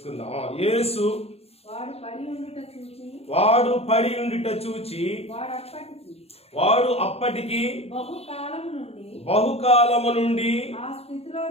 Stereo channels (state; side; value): late; right; 0.29 ms